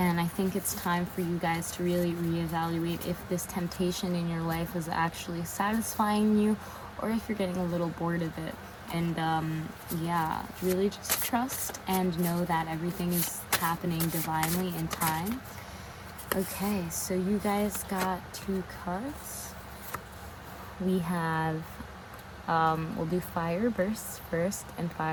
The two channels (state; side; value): identical; both; correlation 1.00